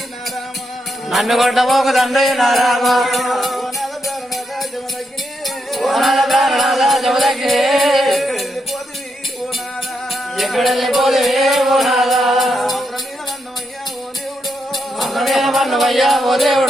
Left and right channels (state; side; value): normal; both; correlation 0.81